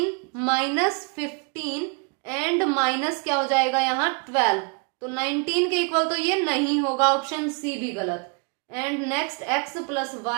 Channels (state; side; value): quieter; left; 35.2 dB